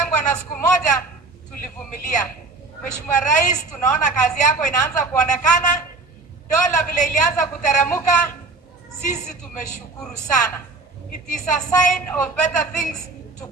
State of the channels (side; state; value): left; quieter; 3.5 dB